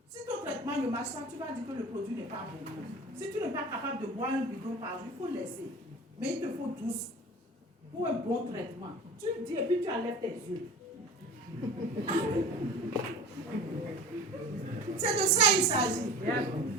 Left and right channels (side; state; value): both; normal; correlation 0.38